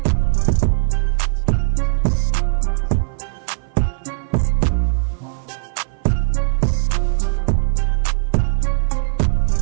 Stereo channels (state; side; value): silent; left; 57 dB below the other